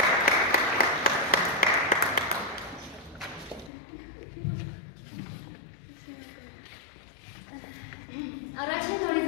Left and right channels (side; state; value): right; drops out; at 3.7 s